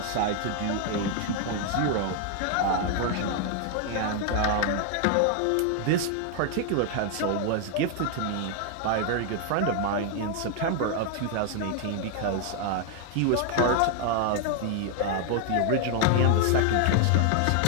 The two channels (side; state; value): both; different; correlation 0.00